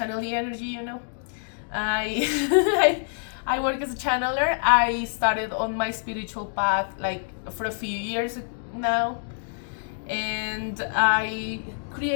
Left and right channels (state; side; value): silent; right; digital silence